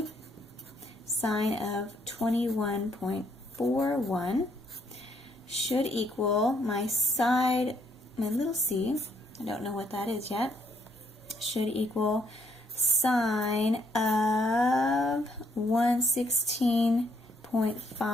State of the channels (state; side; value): normal; both; correlation 0.70